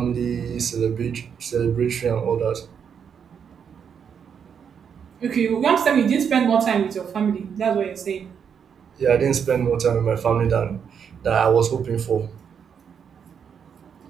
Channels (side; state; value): left; quieter; 7.3 dB